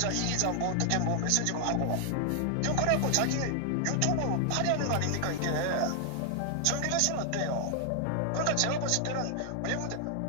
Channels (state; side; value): different; both; correlation 0.00